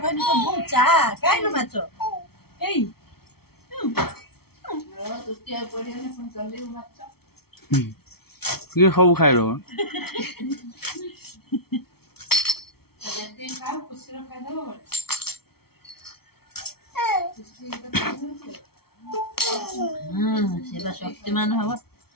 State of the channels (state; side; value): late; right; 0.95 ms